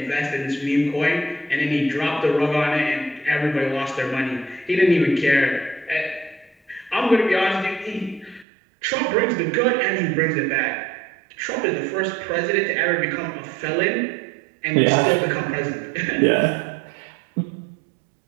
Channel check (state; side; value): drops out; left; at 8.5 s